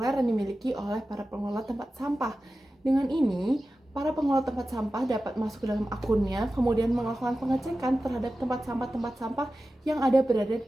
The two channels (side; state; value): both; normal; correlation 0.94